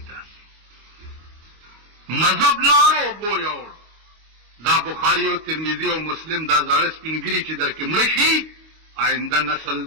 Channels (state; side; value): late; left; 25 ms